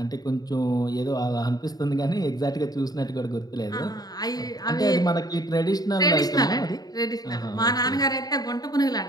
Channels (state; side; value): late; right; 0.19 ms